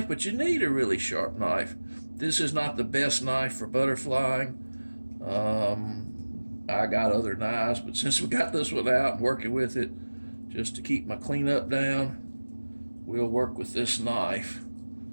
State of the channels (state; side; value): inverted; both; correlation -1.00